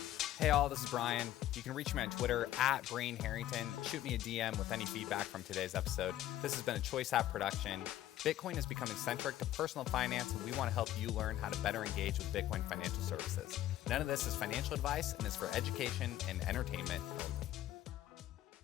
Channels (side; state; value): right; quieter; 13.4 dB